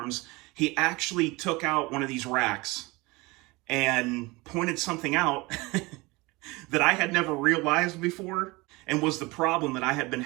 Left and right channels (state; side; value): quieter; left; 23.6 dB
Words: He actually took out one of these racks and pointed something out that I had never realized before and was the problem that I had been